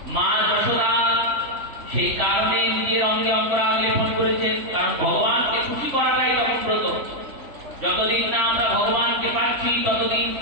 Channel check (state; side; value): late; left; 3.0 ms